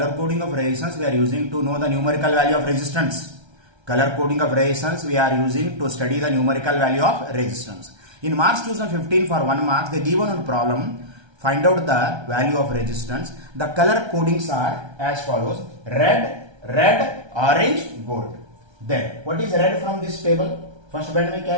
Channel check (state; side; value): late; left; 1.3 ms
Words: coding of resistance we are using to know the numerical value of resistance. Color coding of resistance we are using to study the numerical value of resistance. In March 2015 for 1 mark they given a problem, find out the value of resistance. The color codings are as follows: red, orange, gold. Then what is red from this table? First band में